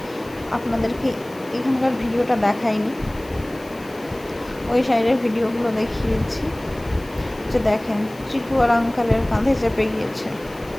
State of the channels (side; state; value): left; noise; hiss, 23 dB below the sound